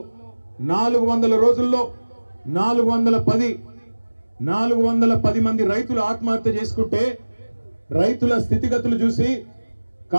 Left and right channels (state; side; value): inverted; both; correlation -1.00